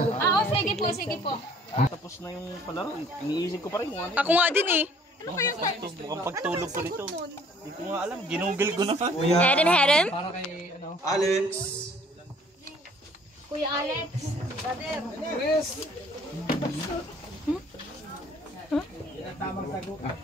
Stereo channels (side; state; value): both; normal; correlation 0.57